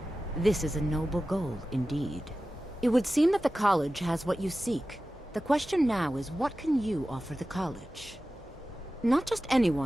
This is a noble goal, indeed. It would seem that the college has what you seek. The question now is, what can you offer the college? Not just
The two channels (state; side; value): normal; both; correlation 0.95